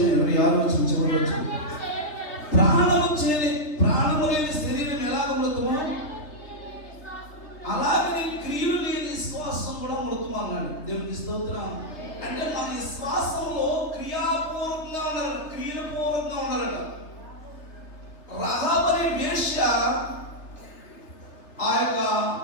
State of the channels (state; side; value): late; right; 3.3 ms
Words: 26వ వచనం, చివరి వచనం. ప్రాణము లేని శరీరం ఎలాగ మృతమో అలాగే క్రియలు లేని విశ్వాసం కూడా మృతము అన్నాడు. దేవునికి స్తోత్రం. అంటే మన విశ్వాసంలో క్రియాపూర్వకంగా ఉన్నారు, క్రియపూర్వకంగా ఉన్నారట. రహాబు అనే వేశ్య ఆ యొక్క